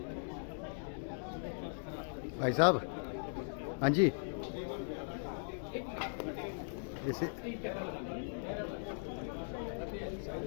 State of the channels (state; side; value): silent; right; digital silence